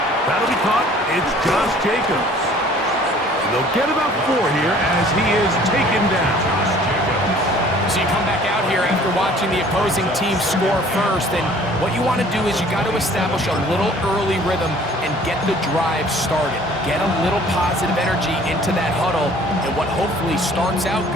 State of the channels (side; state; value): both; normal; correlation 0.53